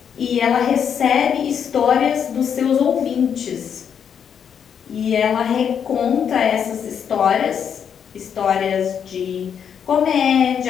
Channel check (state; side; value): quieter; right; 7.9 dB